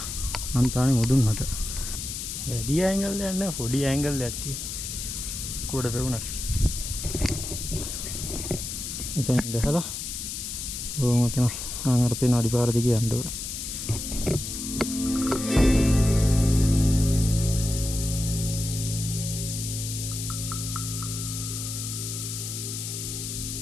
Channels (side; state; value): left; noise; hiss, 6 dB below the sound